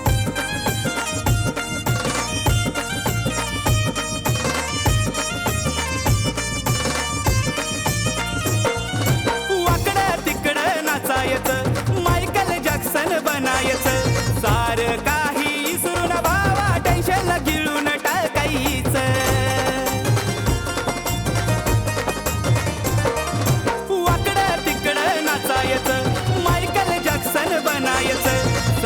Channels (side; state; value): both; identical; correlation 1.00